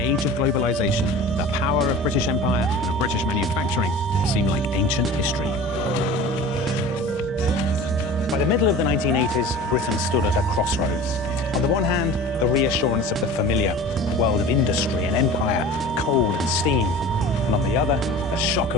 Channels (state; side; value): normal; both; correlation 0.39